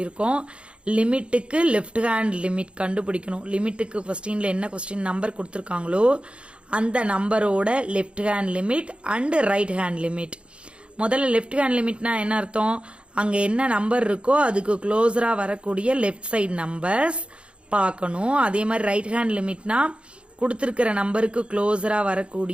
லிமிட்டுக்கு லெஃப்ட் ஹேண்ட் லிமிட் கண்டுபிடிக்கணும். லிமிட்டுக்கு கொஸ்டின்ல என்ன கொஸ்டின் நம்பர் கொடுத்துருக்காங்களோ அந்த நம்பரோட left hand limit and right hand limit. முதல்ல லெஃப்ட் ஹேண்ட் லிமிட்னா என்ன அர்த்தம்? அங்க என்ன நம்பர் இருக்கோ அதுக்கு க்ளோஸரா வரக்கூடிய லெஃப்ட் சைடு நம்பர்ஸ் பார்க்கணும். அதே மாதிரி ரைட் ஹேண்ட் லிமிட்னா கொடுத்திருக்கிற நம்பருக்கு க்ளோஸரா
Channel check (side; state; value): left; late; 0.058 ms